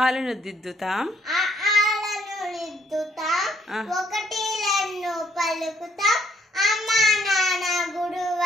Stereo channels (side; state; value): both; normal; correlation 0.68